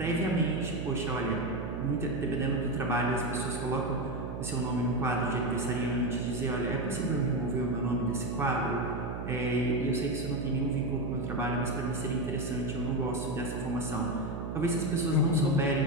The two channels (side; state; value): right; noise; hum, 5 dB below the sound